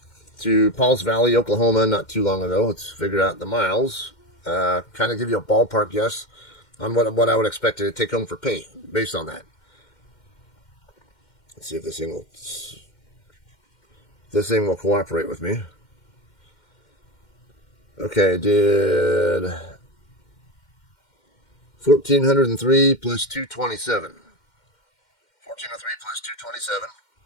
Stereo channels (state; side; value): late; right; 2.1 ms